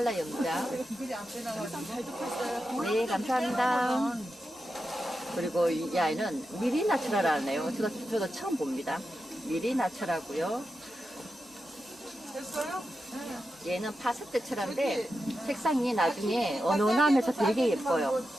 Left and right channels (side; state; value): both; normal; correlation 0.89